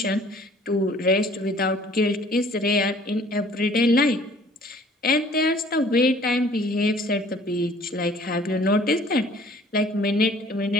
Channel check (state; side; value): normal; both; correlation 0.54